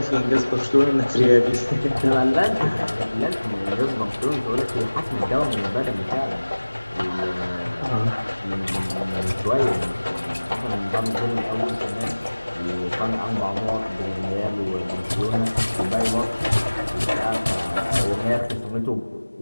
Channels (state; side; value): inverted; both; correlation -1.00